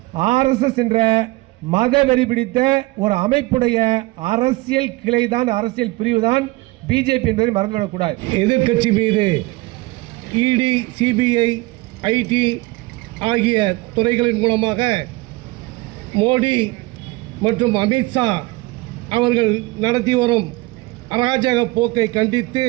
ஆர்எஸ்எஸ் என்ற மதவெறி பிடித்த ஒரு அமைப்புடைய அரசியல் கிளைதான், அரசியல் பிரிவு தான் பிஜேபி என்பதை மறந்துவிடக்கூடாது. எதிர்கட்சி மீது இடி, சிபிஐ, ஐடி ஆகிய துறைகளின் மூலமாக மோடி மற்றும் அமித்ஷா அவர்கள் நடத்தி வரும் அராஜக போக்கை கண்டித்து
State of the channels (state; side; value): quieter; left; 21.3 dB